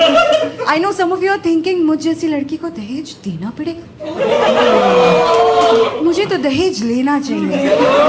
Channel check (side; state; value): both; identical; correlation 1.00